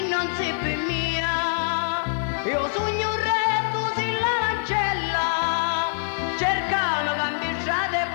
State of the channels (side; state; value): right; silent; digital silence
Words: non sei per mia, io sogno un re tu sei l'ancella, cercamo cambiare e